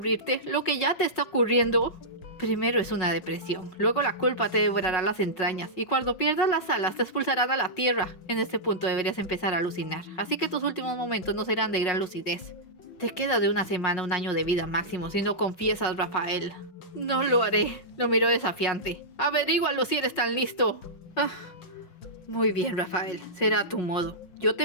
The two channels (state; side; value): late; right; 5.4 ms